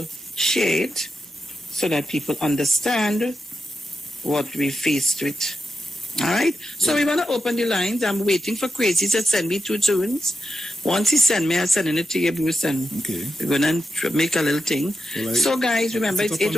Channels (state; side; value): normal; both; correlation 0.88